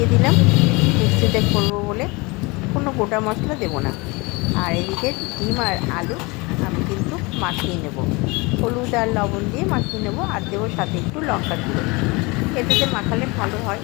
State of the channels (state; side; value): quieter; right; 26.1 dB